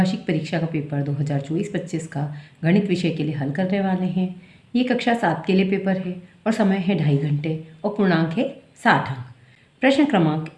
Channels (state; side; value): identical; both; correlation 1.00